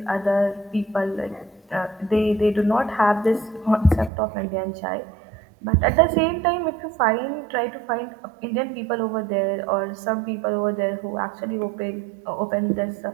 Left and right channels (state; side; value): drops out; left; at 4.1 s